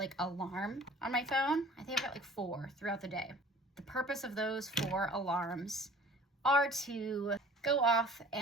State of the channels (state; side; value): normal; both; correlation 0.47